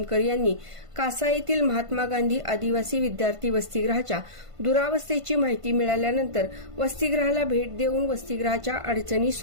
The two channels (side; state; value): left; late; 1.5 ms